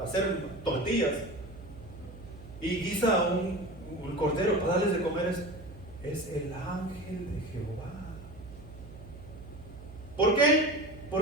hacer tortillas y guisa un cordero para darles de comer? Es el ángel de Jehová. ¿Por qué?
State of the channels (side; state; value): right; noise; hum, 16 dB below the sound